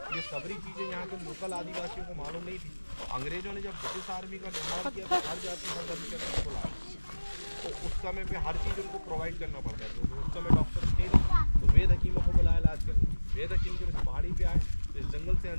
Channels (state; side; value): inverted; both; correlation -1.00